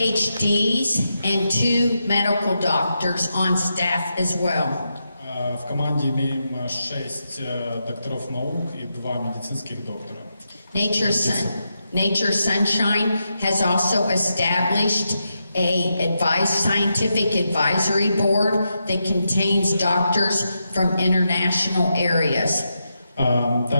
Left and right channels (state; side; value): inverted; both; correlation -0.86